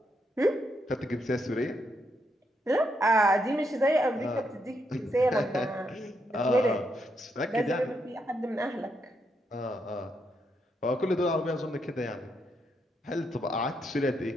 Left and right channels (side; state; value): both; normal; correlation 0.79